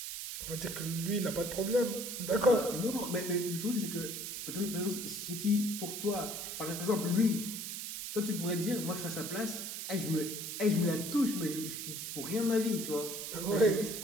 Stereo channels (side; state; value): right; noise; hiss, 6 dB below the sound